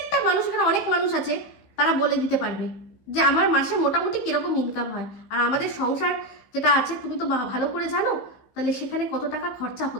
মানুষ, এখানে অনেক মানুষ আছে তারা বলে দিতে পারবে যে আমার মাসে মোটামুটি কিরকম ইনকাম হয়। আর আমাদের সংসার যেটা আছে তুমি তো ভালো করে জানো, তাহলে সেখানে কত টাকা খরচা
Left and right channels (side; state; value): right; late; 16 ms